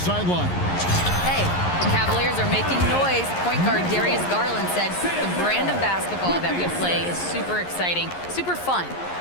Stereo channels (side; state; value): right; late; 11 ms